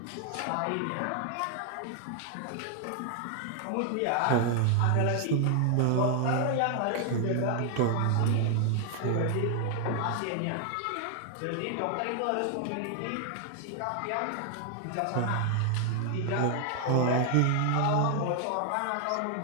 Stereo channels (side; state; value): both; different; correlation 0.00